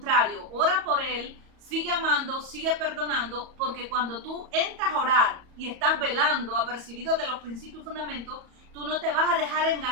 ora por él, sigue amando, sigue perdonando, porque cuando tú entras a orar y estás velando, apercibido de los principios y fundamentos, tú no te vas a dejar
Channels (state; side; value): late; left; 34 ms